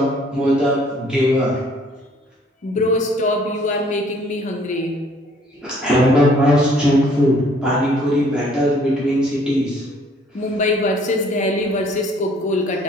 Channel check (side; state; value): both; normal; correlation 0.60